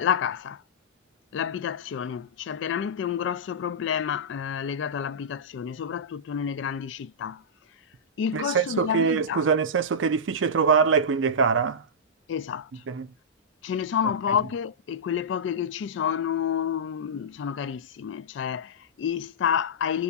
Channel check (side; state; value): both; normal; correlation -0.14